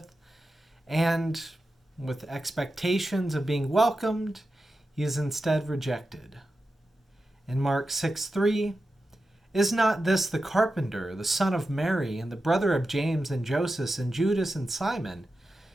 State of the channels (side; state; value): both; normal; correlation 0.91